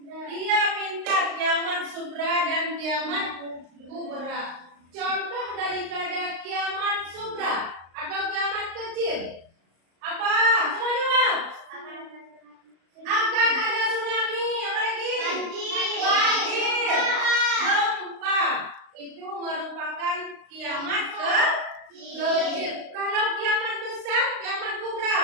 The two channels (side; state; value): left; late; 35 ms